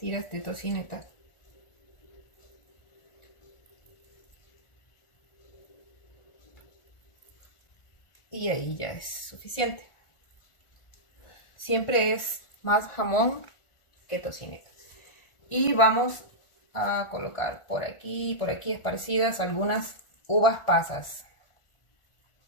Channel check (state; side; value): late; right; 1.4 ms